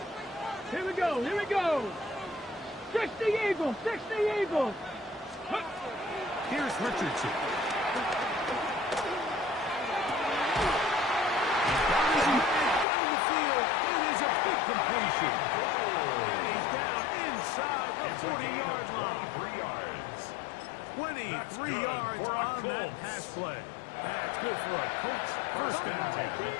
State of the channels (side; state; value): right; drops out; at 12.9 s